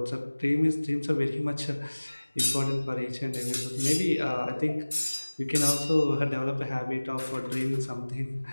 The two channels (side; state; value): both; inverted; correlation -1.00